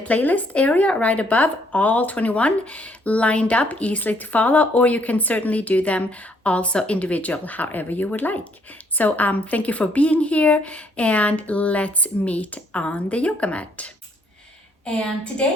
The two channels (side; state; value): both; normal; correlation 0.67